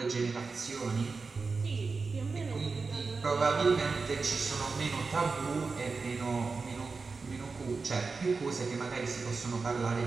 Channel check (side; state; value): left; quieter; 4.4 dB